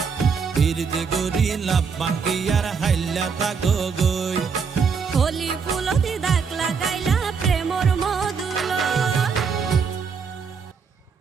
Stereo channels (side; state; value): left; quieter; 5.8 dB